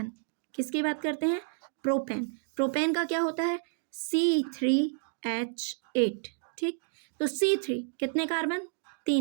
किसकी बात करते हैं प्रोपेन। प्रोपेन का क्या होता है C3H8, ठीक, तो C3 कितने कार्बन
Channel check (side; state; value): left; silent; digital silence